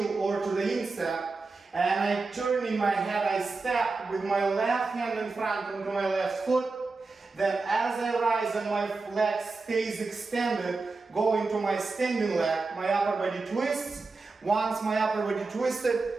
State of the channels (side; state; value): left; quieter; 3.9 dB